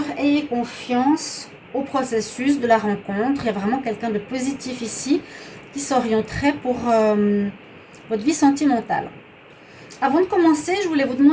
ayez confiance au processus de la rencontre. Il y a vraiment quelqu'un de positif ici qui s'orienterait pour votre vie sentimentale. Avant de commencer, je voulais vous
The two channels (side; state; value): both; identical; correlation 1.00